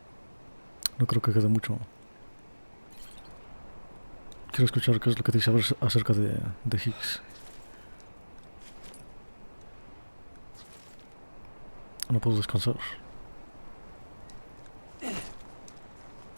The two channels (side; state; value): both; inverted; correlation -1.00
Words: No creo que quede mucho. Quiero escuchar qué es lo que dice acerca de Higgs. No puedo descansar.